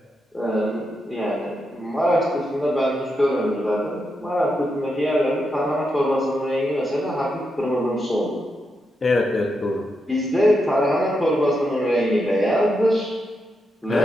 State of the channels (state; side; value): normal; both; correlation 0.84